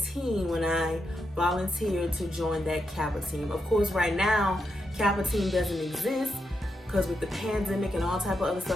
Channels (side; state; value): both; normal; correlation 0.84